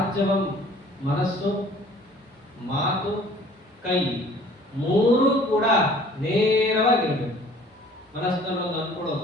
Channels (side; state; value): both; normal; correlation 0.52